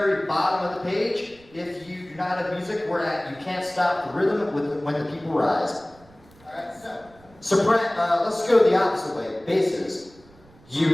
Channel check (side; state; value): right; noise; rumble, 26 dB below the sound